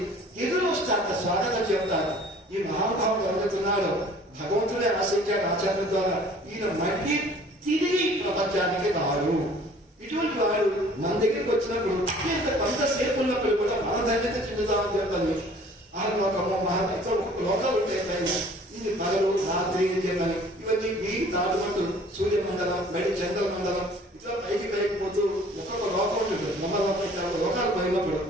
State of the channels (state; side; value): normal; both; correlation 0.52